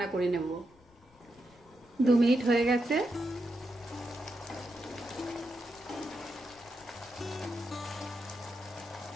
করে নেব। 2 মিনিট হয়ে গেছে।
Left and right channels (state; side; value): noise; left; rumble, 28 dB below the sound